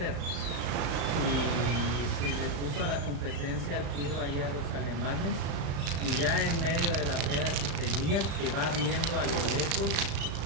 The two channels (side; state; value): left; late; 35 ms